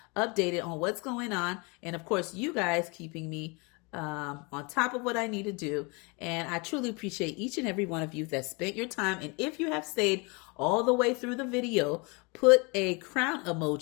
updated on what's going on. And of course, you guys keeping me on top of what I need to do. And I truly appreciate each and every one of you that spent your time. And if you have stayed all the way through the video, put a crown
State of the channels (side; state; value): right; quieter; 29.7 dB